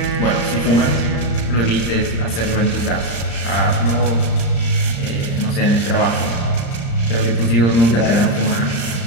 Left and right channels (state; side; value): late; right; 34 ms